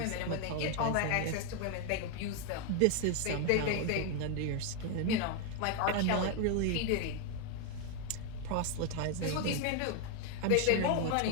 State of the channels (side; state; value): both; different; correlation 0.00